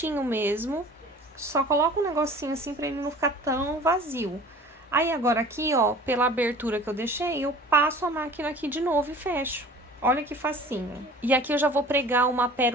mesmo, só coloca um negocinho assim pra ele não ficar tão vazio. Aí, agora aqui, ó, pela abertura que eu deixei, eu passo a máquina aqui de novo e fecho. Olha que facinho. E aqui eu já vou pregar uma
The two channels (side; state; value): both; normal; correlation 0.45